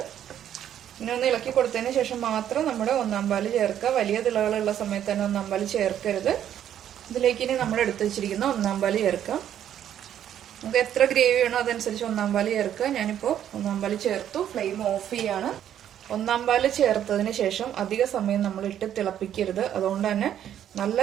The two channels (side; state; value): left; quieter; 10.4 dB